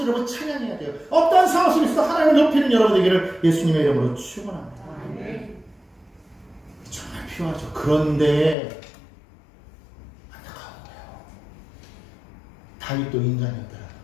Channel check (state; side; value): drops out; right; at 8.6 s